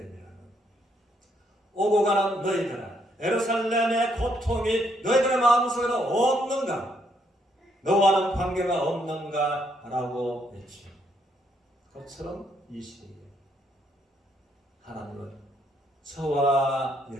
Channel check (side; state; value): both; normal; correlation 0.73